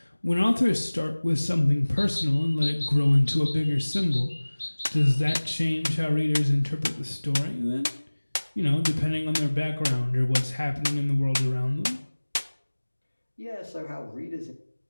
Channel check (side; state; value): both; inverted; correlation -1.00